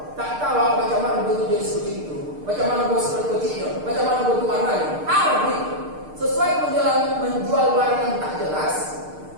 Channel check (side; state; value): left; late; 6.6 ms